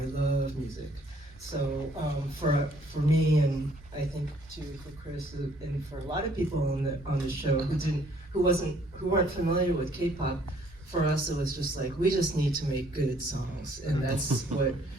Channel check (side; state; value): both; normal; correlation 0.62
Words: love music. So for me, and I think too for Chris, and for a lot of people on the show who weren't familiar with K-pop, for us it was just like, we just need to make good songs, and that's what